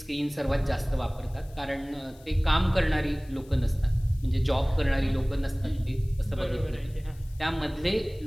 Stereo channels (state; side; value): noise; left; hiss, 27 dB below the sound